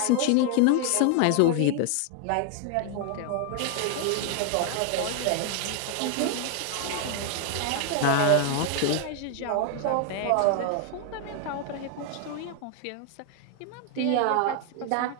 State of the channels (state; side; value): different; both; correlation 0.00